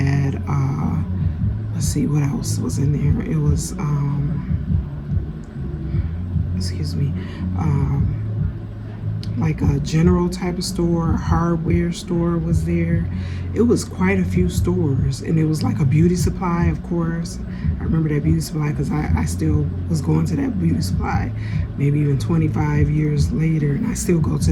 let's see, what else was in there? It was, excuse me, like a general type of store, a hardware store was there. It was quite a few stores, and it was like a beauty supply, of course. I remember that beauty supply because I still was going to that beauty supply maybe even 25 years later, and I still go to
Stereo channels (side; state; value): both; identical; correlation 1.00